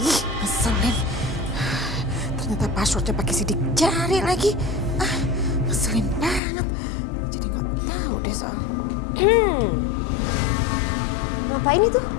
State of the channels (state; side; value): drops out; right; at 6.4 s